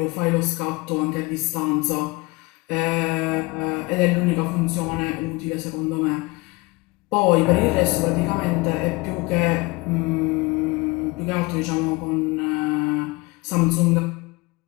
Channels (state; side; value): quieter; right; 24.9 dB